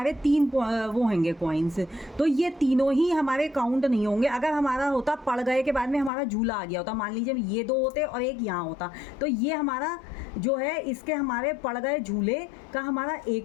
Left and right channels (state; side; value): drops out; right; at 6.1 s